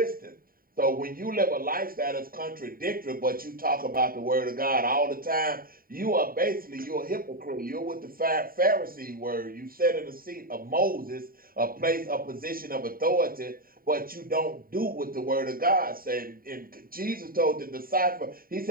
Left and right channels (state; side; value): late; left; 0.42 ms